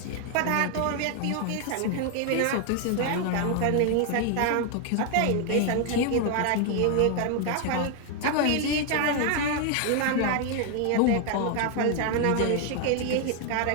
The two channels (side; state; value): both; different; correlation 0.01